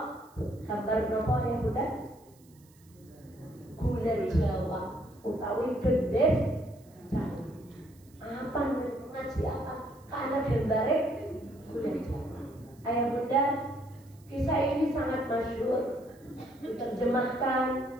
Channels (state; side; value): noise; right; hiss, 29 dB below the sound